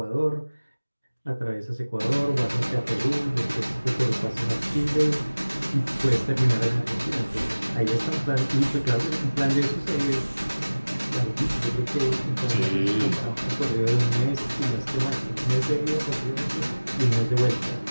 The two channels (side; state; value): both; inverted; correlation -1.00